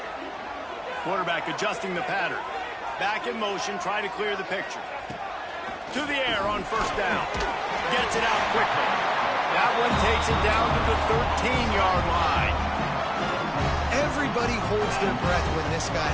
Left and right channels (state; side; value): identical; both; correlation 1.00